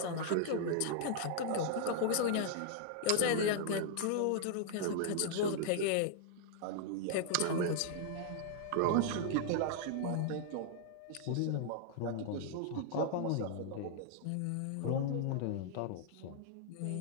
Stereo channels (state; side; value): different; both; correlation -0.01